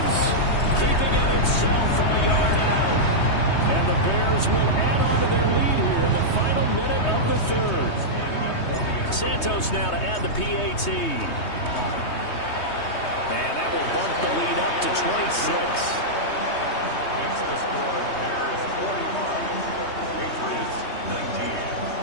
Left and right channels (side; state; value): right; late; 3.2 ms